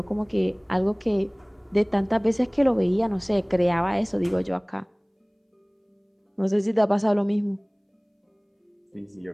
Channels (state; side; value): identical; both; correlation 1.00